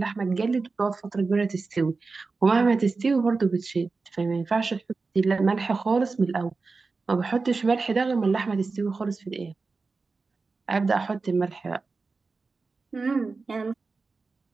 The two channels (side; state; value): left; quieter; 4.1 dB